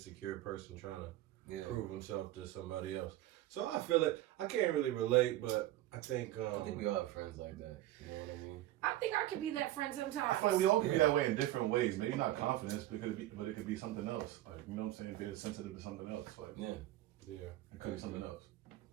person trying to prove himself to somebody else. So I feel it. I can't really relate, but I think we all have friends like that. You know what I mean? I think I could be that friend sometimes. I feel like we all can be that way in different ways. Maybe not confidence, but it could be something else. Like, you know what I'm saying? Being sensitive to something else. Like, yeah, it could be something else.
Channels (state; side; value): quieter; left; 14.8 dB